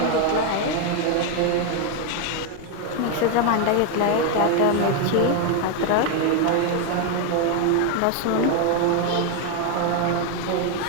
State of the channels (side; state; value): both; different; correlation 0.01